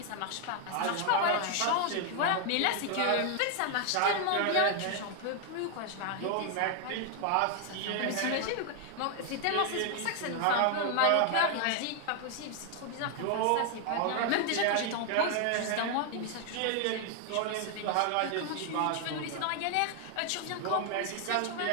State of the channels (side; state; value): both; different; correlation 0.00